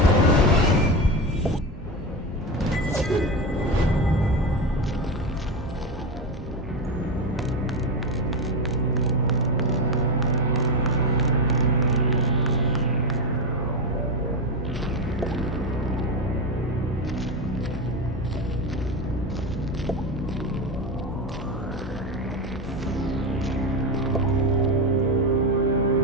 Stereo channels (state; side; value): normal; both; correlation 0.15